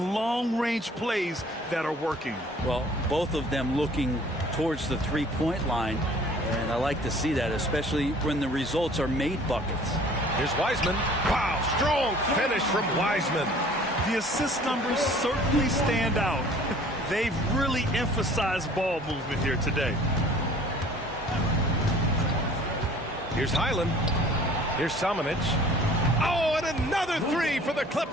long-range plays that are working. Well, both of them looking towards the three-point line, and I like to see that, especially when the results are made buckets. Here's Wiseman. Wow, strong finish from Wiseman. The assist numbers certainly stand out. They've really emphasized ball movement here today. Here's Highland. Here's Samanic. Oh, and another three for the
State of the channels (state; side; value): normal; both; correlation 0.51